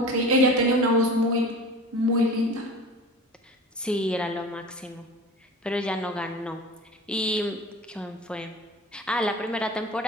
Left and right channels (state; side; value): normal; both; correlation 0.37